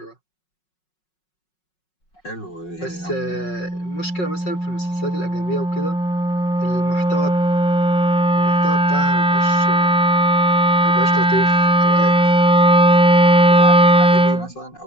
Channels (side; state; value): right; late; 5.4 ms